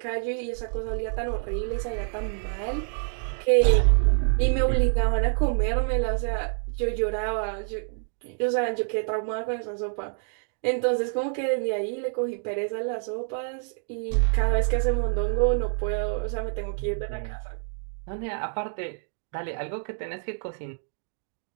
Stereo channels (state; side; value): silent; left; digital silence